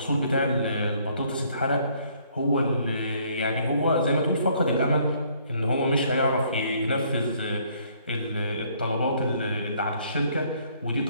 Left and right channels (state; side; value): inverted; both; correlation -0.64